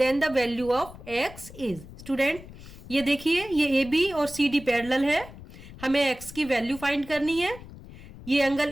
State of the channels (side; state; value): left; noise; rumble, 16 dB below the sound